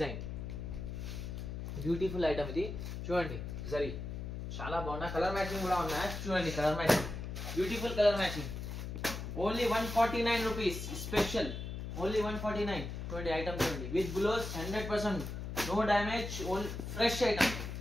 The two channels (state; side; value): noise; left; hum, 6 dB below the sound